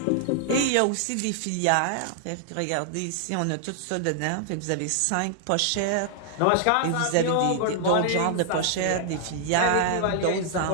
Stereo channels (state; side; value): different; both; correlation 0.00